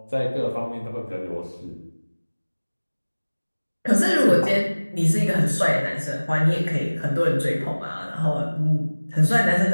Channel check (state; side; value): inverted; both; correlation -1.00